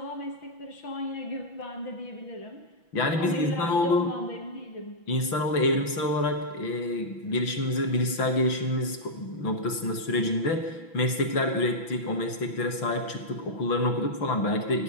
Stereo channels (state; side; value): late; right; 6.0 ms